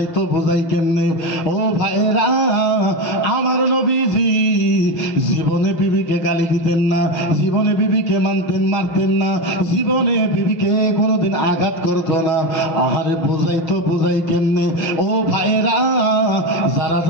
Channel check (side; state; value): right; late; 6.4 ms